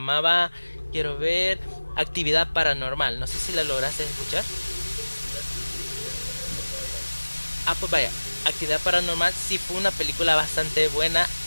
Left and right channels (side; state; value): both; inverted; correlation -1.00